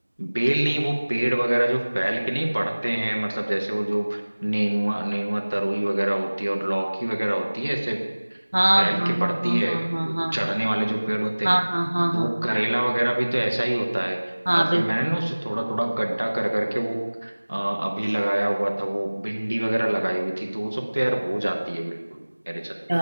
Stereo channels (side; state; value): both; inverted; correlation -1.00